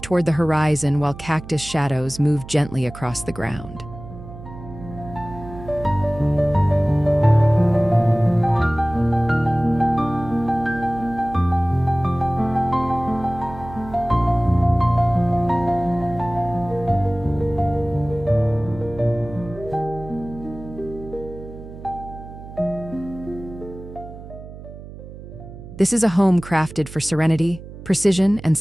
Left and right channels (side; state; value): right; noise; hum, 14 dB below the sound